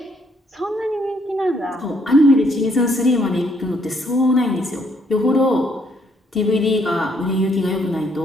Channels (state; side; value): normal; both; correlation 0.70